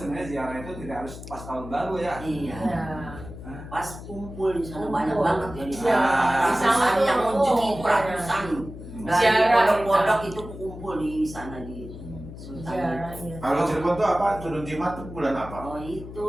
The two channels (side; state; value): left; noise; hum, 13 dB below the sound